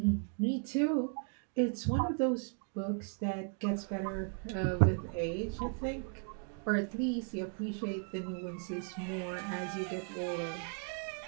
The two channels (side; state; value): left; quieter; 40.0 dB